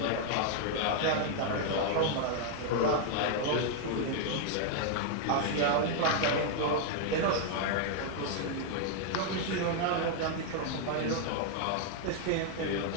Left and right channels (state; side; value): different; both; correlation 0.00